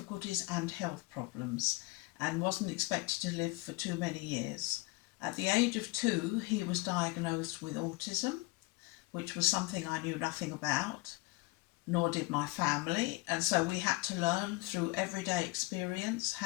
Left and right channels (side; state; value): right; quieter; 22.5 dB